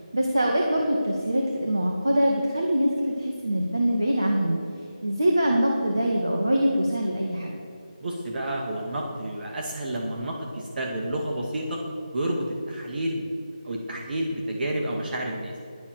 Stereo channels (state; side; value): inverted; both; correlation -0.91